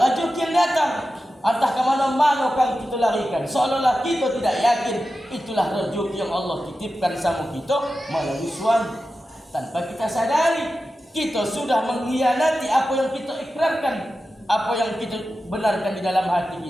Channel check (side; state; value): both; normal; correlation 0.92